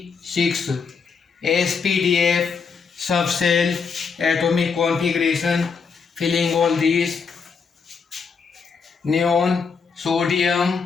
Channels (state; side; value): quieter; right; 5.5 dB